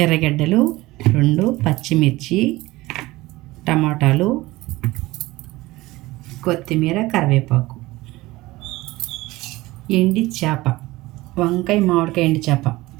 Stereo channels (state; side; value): quieter; left; 19.4 dB